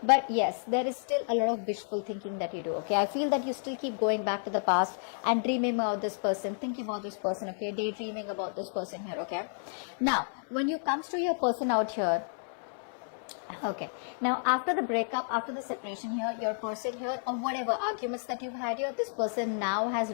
But yes, there is still a lot of wishful thinking that you do. Okay, I feel that you still keep going back to the past and dreaming about this person, thinking about this person. Okay, daydreaming about this person here. Okay, now when you comes to your person out here, okay, now after the breakup, after the separation here, your person here, or whatever arguments that you've had here, this person now has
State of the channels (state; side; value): silent; right; 57 dB below the other